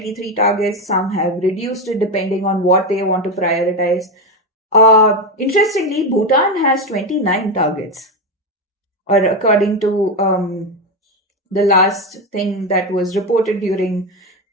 targets, some have reduced it depending on what they want to prioritize. Interestingly, Bhutan has 29 targets, or according to the last thing that was reported during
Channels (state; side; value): normal; both; correlation 0.12